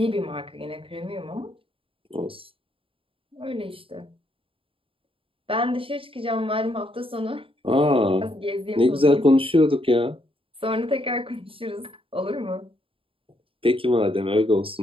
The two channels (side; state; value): left; late; 0.26 ms